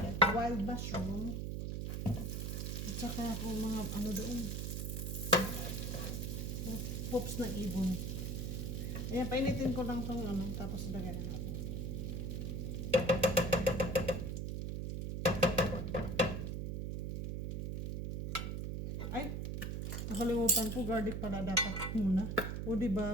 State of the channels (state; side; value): noise; right; hum, 3 dB below the sound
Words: wild mushroom. At saka kung mga ano doon. Pops ng ibon. Ayan, painitin ko lang itong tapos lagyan na natin. Ay, nakalimutan ko, garlic pala dapat muna. O